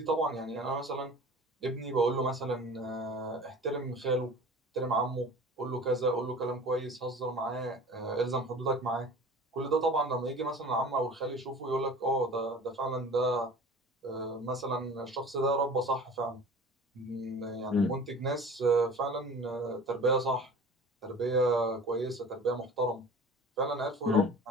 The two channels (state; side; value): normal; both; correlation 0.41